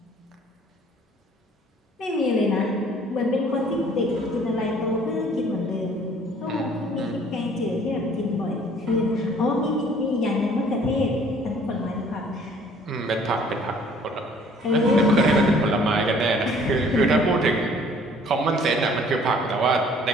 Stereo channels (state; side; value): normal; both; correlation 0.56